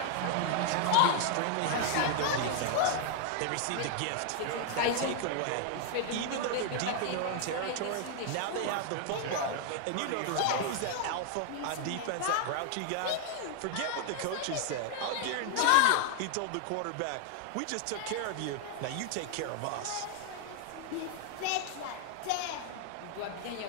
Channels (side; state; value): both; different; correlation 0.00